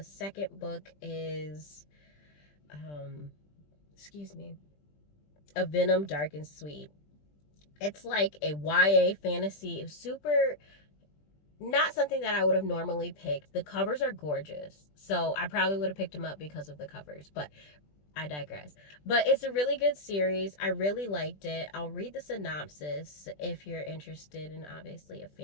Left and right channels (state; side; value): late; right; 20 ms